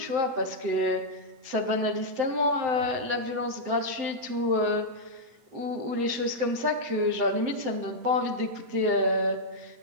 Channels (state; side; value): late; left; 7.8 ms